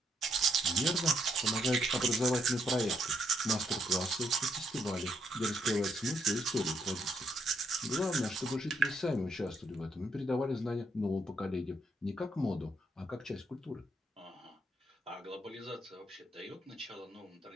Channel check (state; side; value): normal; both; correlation 0.74